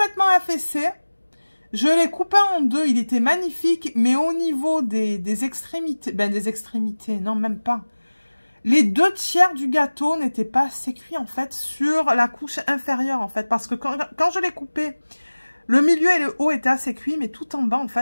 affaissé. Je l'ai coupé en deux, il était magnifique, mais au niveau des extrémités, des extrémités, non même pas. Les 2/3 du gâteau n'étaient pas assez cuits en fait sur la couche inférieure en fait, parce que quand je l'ai coupé, le milieu et le haut étaient assez cuits, mais tout en bas en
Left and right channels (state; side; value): inverted; both; correlation -1.00